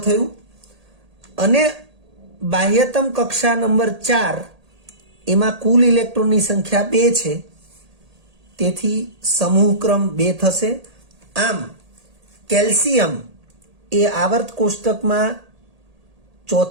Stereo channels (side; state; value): left; late; 1.8 ms